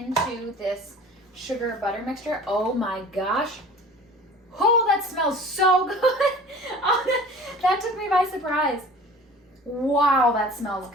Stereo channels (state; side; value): normal; both; correlation 0.44